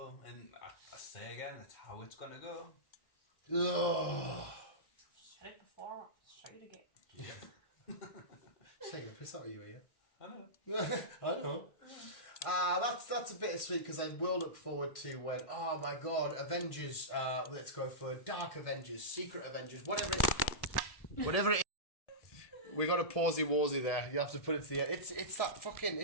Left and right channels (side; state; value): right; late; 1.7 ms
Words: and I say again, it's how it's gonna go. Ugh. Said it before, say it again. Shaking a piss out of you, here. I know. I know. That's a bit sweet because I will look forward to when, oh my god, Avengers, let's go for Dark Avengers, Secret Avengers, whatever it is. We got a pausey-warsey there. You have to put it to the end. It's that fucking,